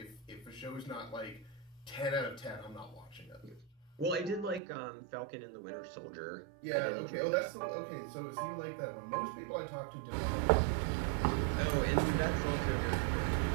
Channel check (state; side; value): drops out; left; at 4.6 s